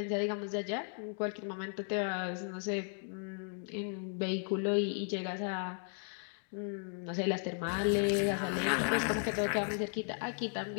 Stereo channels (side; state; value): right; silent; 54 dB below the other